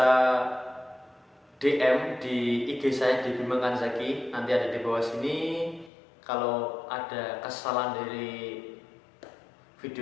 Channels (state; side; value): drops out; right; at 5.9 s